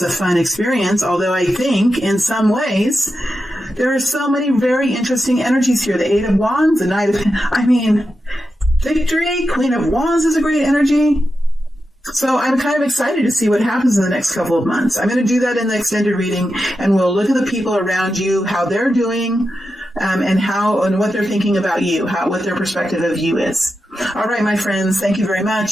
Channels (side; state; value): both; normal; correlation 0.89